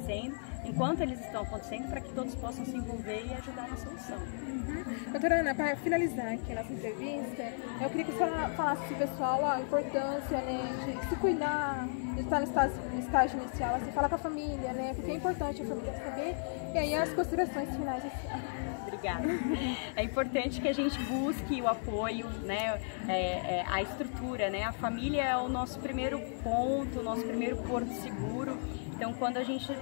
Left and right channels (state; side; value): silent; right; digital silence